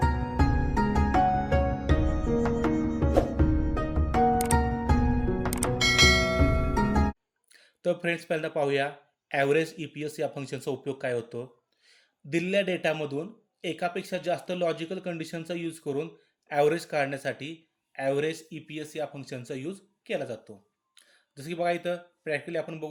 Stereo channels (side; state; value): both; identical; correlation 1.00